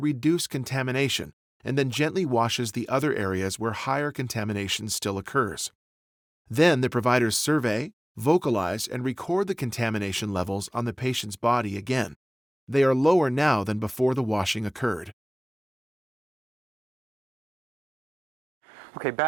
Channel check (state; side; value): normal; both; correlation 0.98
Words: contamination, and then gently washes the other areas where higher contamination still occurs. Then the providers survey, vocalize, and record the contamination levels on the patient's body again. They are lower now than before the washing occurred. Okay,